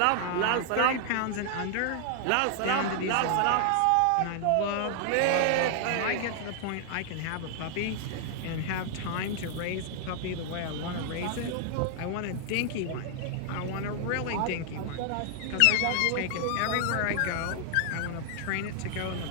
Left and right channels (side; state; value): both; different; correlation 0.00